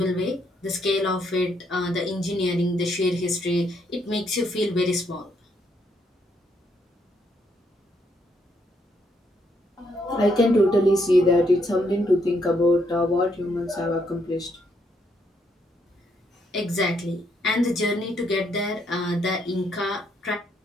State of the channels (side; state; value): both; normal; correlation 0.74